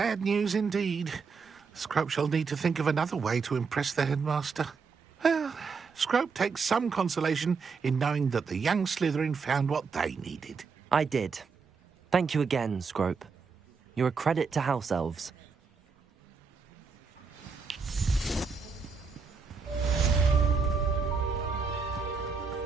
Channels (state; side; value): quieter; left; 5.2 dB